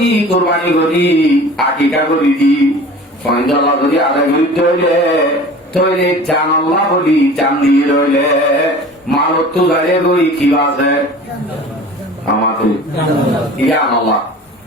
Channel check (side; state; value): both; normal; correlation 0.42